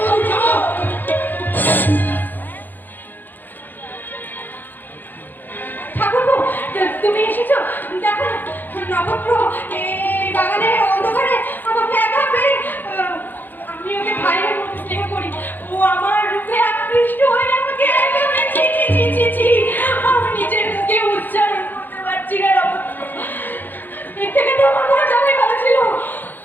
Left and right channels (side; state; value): right; late; 0.088 ms